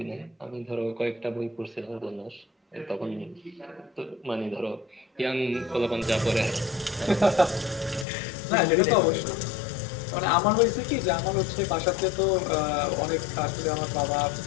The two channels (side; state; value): right; drops out; at 8.1 s